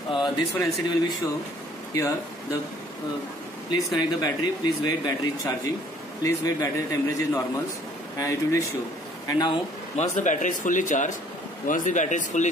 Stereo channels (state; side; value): normal; both; correlation 0.58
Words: one LCD will be show here the please connect the battery, please wait, battery is charging, please wait, battery temperature is normal, and it will be show. And now once the battery is fully charged,